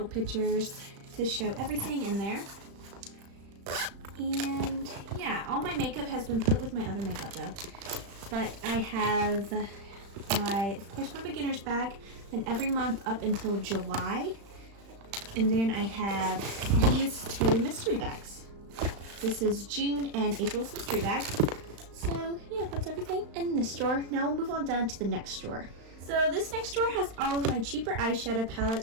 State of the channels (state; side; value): late; left; 35 ms